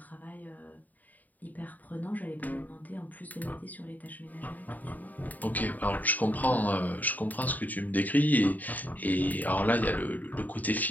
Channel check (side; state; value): right; late; 0.081 ms